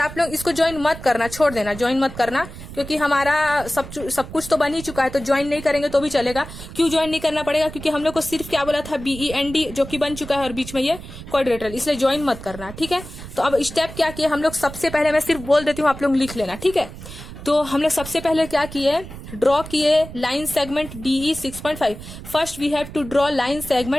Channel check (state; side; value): noise; right; rumble, 13 dB below the sound